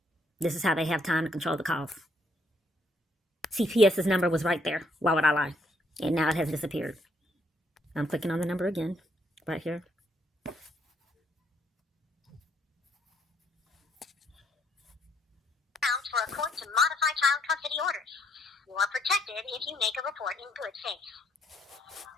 This is how they have time to control the calls. CPS's number was right there. Why would I lie? And now it has disappeared. I'm clicking on the number again, right here. For a court to modify child custody orders. You are protected if you make a report in good faith.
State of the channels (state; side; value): normal; both; correlation 0.70